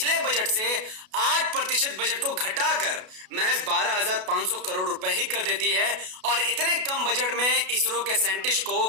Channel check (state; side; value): late; left; 32 ms